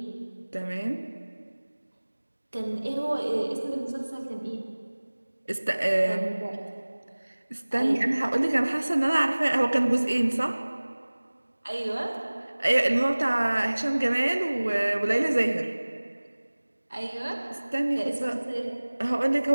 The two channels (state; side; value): inverted; both; correlation -1.00